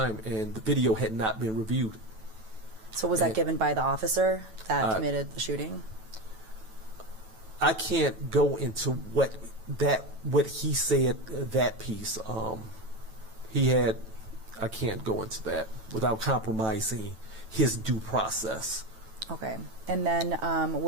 and the video had not been reviewed. So was that given by the officer that committed the shooting? I can't go into what he said, that piece. I can't go into that without compromising his due process. Okay. And then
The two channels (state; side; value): late; left; 9.1 ms